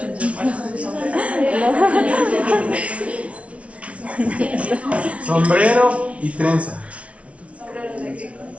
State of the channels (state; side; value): late; left; 0.063 ms